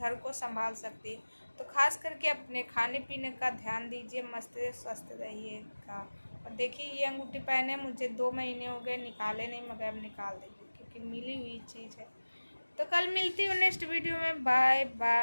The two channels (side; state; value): both; inverted; correlation -1.00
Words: घर को संभाल सकती है। तो खास करके अपने खाने पीने का ध्यान दीजिए, मस्त स्वस्थ रहिएगा। और देखिए ये अंगूठी पहने मुझे 2 महीने हो गए, निकाले नहीं, मगर अब निकाल देंगे क्योंकि मिली हुई चीज़ है। तो कल मिलती हूँ नेक्स्ट वीडियो में। Bye